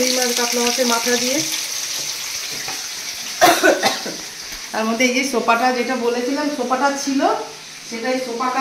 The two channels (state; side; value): identical; both; correlation 1.00